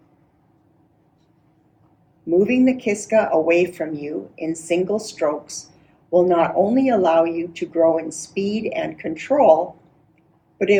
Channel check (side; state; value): both; identical; correlation 1.00